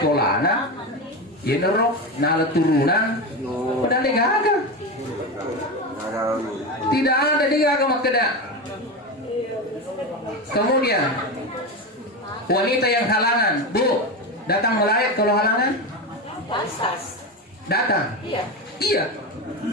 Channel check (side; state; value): both; normal; correlation 0.18